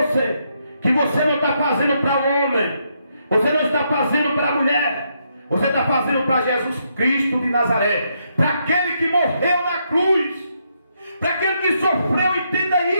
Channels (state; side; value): inverted; both; correlation -0.77